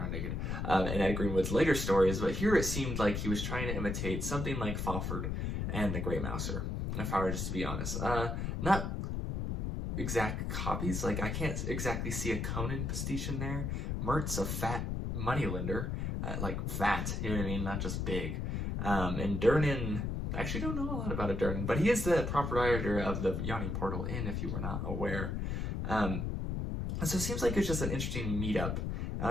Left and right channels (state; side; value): noise; left; rumble, 2 dB below the sound